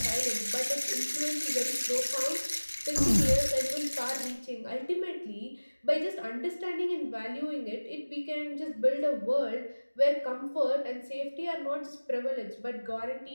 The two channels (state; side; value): inverted; both; correlation -1.00